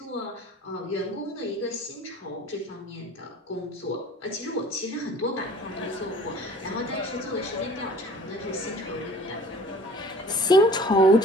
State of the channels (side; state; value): both; normal; correlation 0.47